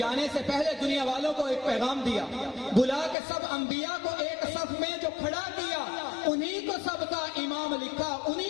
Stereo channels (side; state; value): right; drops out; at 3.2 s